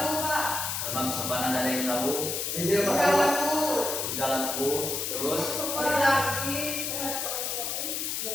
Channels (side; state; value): left; noise; hiss, 2 dB below the sound